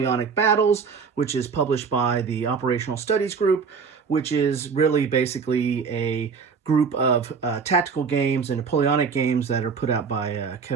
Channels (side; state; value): left; quieter; 5.7 dB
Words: Battles, which is published by the Operational Studies Group, which is really basically a group of tactical games and Napoleonic games that are put out by